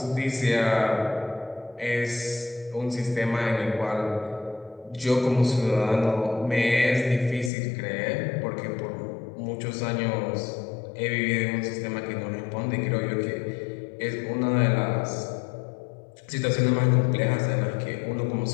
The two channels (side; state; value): right; drops out; at 7.5 s